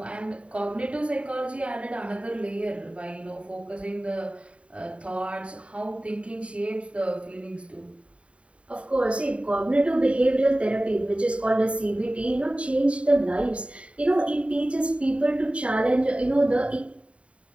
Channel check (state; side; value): late; left; 0.062 ms